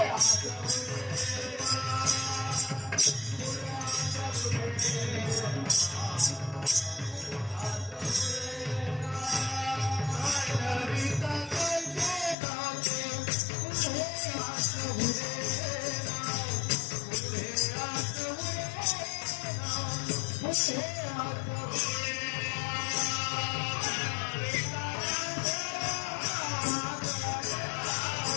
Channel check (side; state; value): right; drops out; at 12.4 s